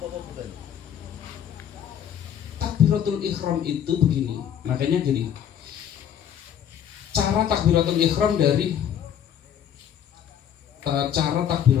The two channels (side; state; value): right; quieter; 9.4 dB